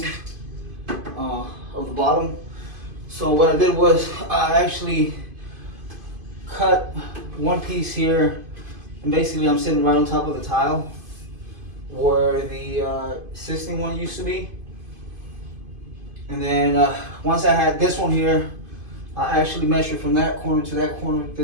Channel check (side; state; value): left; late; 2.5 ms